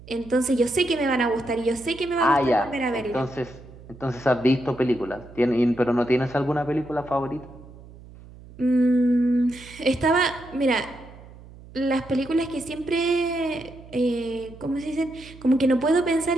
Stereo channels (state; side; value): noise; right; hum, 19 dB below the sound